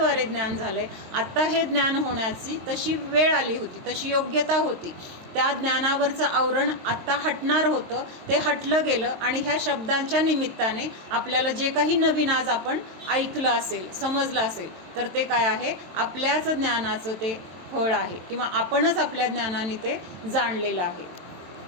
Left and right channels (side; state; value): left; late; 23 ms